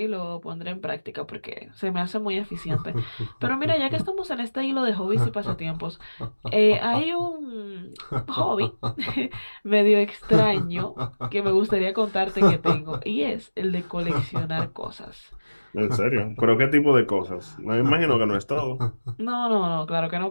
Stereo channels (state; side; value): inverted; both; correlation -1.00